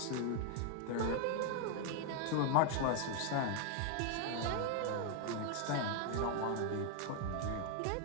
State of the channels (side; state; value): both; different; correlation 0.00